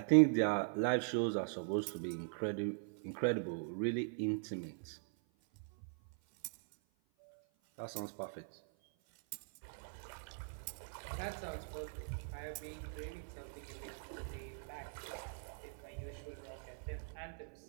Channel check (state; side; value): silent; left; 50 dB below the other